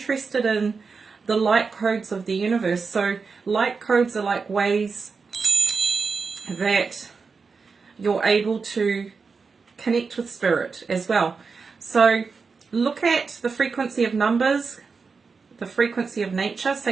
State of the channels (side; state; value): left; quieter; 4.9 dB